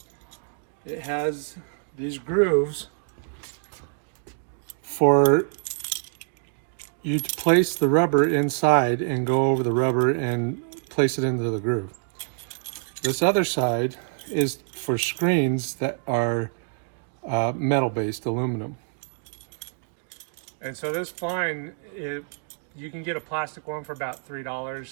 It has these grooves for you to place the rubber inside and go over the rubber and place it into the groove. This other side is for screens that are metal-based, aluminum. And so this spline, you can get a plastic one for about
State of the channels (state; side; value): silent; left; 61 dB below the other